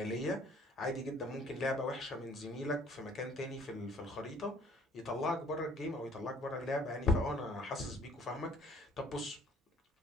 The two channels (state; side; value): normal; both; correlation 0.57